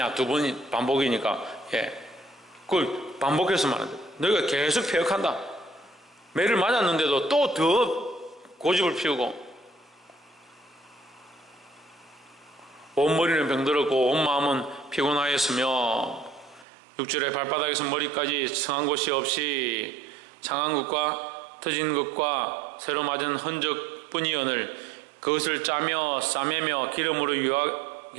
두 번 반복이니까 그걸 반복해서 말하는 거예요. 너희가 계속 패역한다. 매를 맞았는데도 또 더 고집을 피우고 온 머리는 병들었고 온 마음은 피곤하였으며 6절에 발바닥에서 머리까지 성한 곳이 없이 상한 것과 터진 것과 새로 맞은 흔적뿐이오늘 그것을 짜며 싸매며 기름으로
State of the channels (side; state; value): left; drops out; at 16.7 s